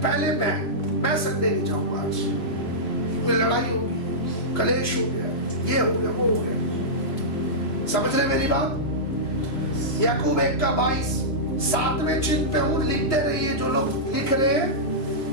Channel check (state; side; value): late; right; 2.8 ms